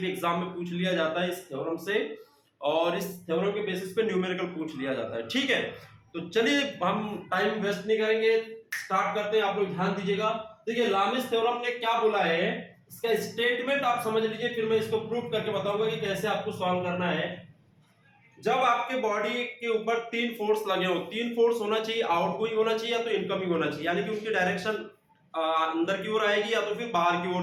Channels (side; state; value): both; identical; correlation 1.00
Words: एग्जाम में पूछ लिया जाता है इस थ्योरम से, और इस थ्योरम के बेसिस पे न्यूमेरिकल पूछ लिया जाता है। ठीक है, तो चलिए हम टाइम वेस्ट नहीं करेंगे, स्टार्ट करते हैं। आप लोग ध्यान दीजिएगा। देखिए लामिस थ्योरम ने क्या बोला है, इसका स्टेटमेंट आप समझ लीजिए, फिर मैं इसको प्रूव करके बताऊंगा कि कैसे आपको सॉल्व करना है। जब आपके बॉडी के ऊपर तीन फोर्स लगे हो, तीन फोर्स होना चाहिए, आउटगोइंग होना चाहिए या तो इनकमिंग होना चाहिए, यानी कि उनकी डायरेक्शन अंदर की ओर आएगी या तो फिर बाहर की